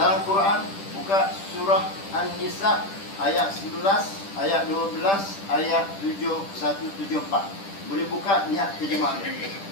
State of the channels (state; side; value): late; right; 10 ms